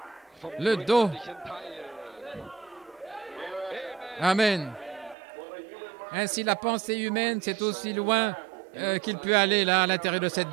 Le dos. Amen. Ainsi, la pensée humaine, c'est aussi loin qu'il peut aller là, à l'intérieur de cette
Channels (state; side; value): drops out; left; at 5.2 s